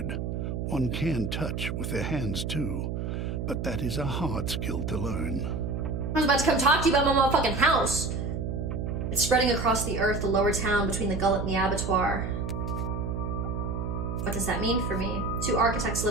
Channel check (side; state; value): right; noise; hum, 3 dB below the sound